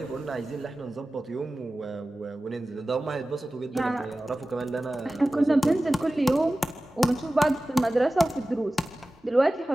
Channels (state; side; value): normal; both; correlation 0.96